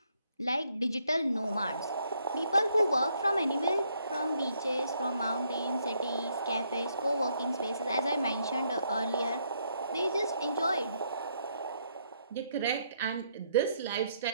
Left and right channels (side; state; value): both; inverted; correlation -0.72